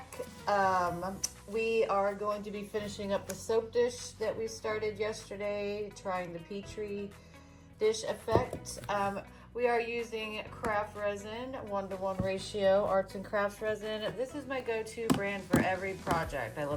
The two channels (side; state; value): both; identical; correlation 1.00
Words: We are going to be finishing up the soap dish that we started yesterday, trying the Petri dish effect. We are using Craft Resin, 1-to-1 ratio, arts and crafts resin. This is my go-to brand for every project. I